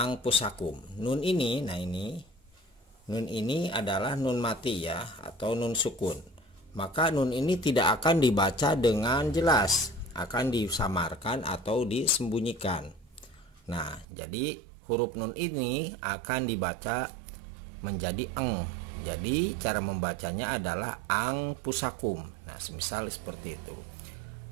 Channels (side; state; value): left; drops out; at 14.1 s